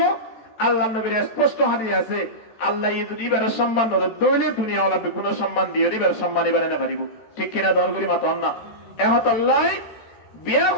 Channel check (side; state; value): right; late; 14 ms